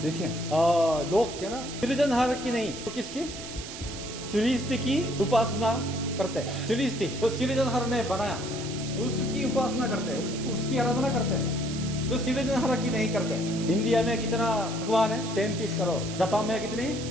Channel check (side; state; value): right; noise; hiss, 11 dB below the sound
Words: देखिए लोग क्या ना, सृजनहार की नहीं तो किसकी? सृष्टि की उपासना करते हैं। सृष्टि तो सृजनहार ने बनाया, उसकी उपासना करते हैं, उसकी आराधना करते हैं, जो सृजनहार की नहीं करते। इंडिया में कितना भगवान है? 33 करोड़। जापान में कितनी?